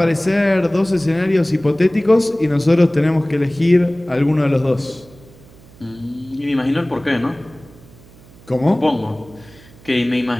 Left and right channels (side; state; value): right; noise; hum, 24 dB below the sound